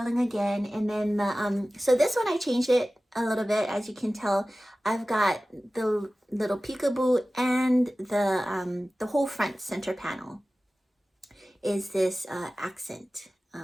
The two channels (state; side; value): normal; both; correlation 0.96